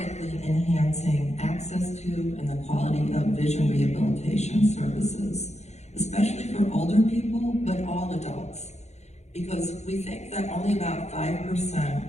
enhancing access to and the quality of vision rehabilitation services, especially for older people, but all adults. Because we think that only about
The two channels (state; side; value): late; right; 0.32 ms